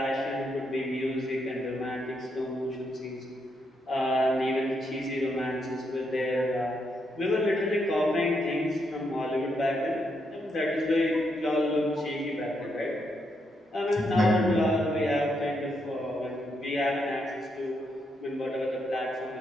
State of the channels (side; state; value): both; normal; correlation 0.79